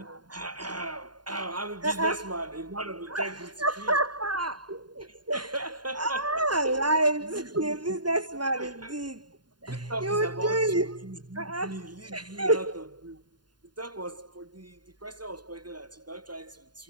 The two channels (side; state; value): left; late; 0.70 ms